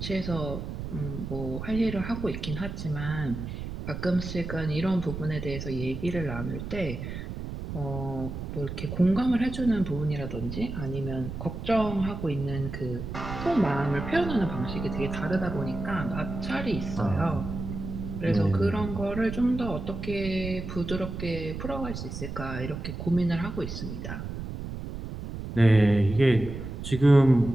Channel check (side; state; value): right; noise; rumble, 7 dB below the sound